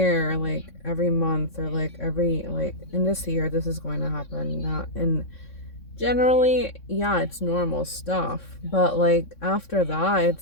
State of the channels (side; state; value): right; late; 3.6 ms